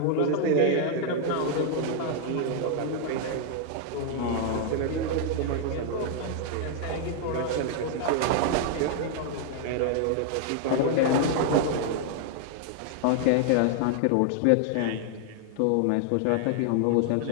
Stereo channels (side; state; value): both; different; correlation 0.00